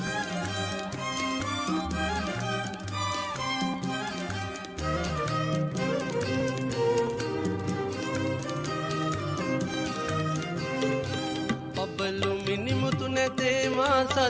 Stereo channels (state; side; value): identical; both; correlation 1.00